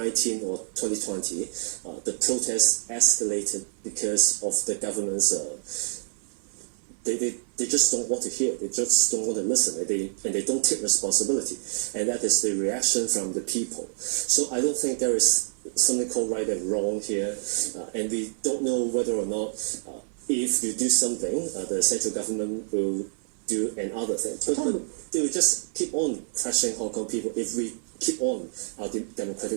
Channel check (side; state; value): left; silent; 56 dB below the other